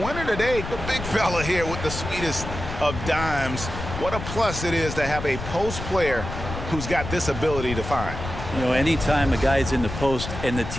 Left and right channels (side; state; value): left; noise; rumble, 7 dB below the sound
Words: today, the big fella here with the sweetest of dimes. What a plus it is to have a post player who's got this ability to find. You know, anytime a guy's in the post and the